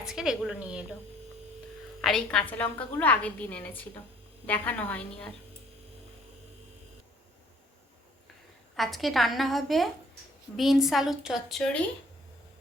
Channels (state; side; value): normal; both; correlation 0.59